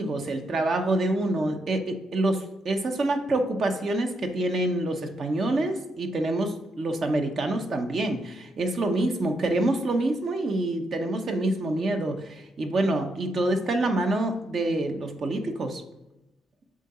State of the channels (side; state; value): both; normal; correlation 0.80